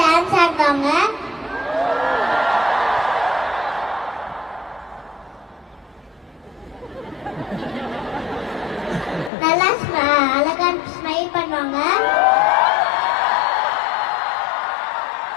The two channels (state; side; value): drops out; right; at 9.3 s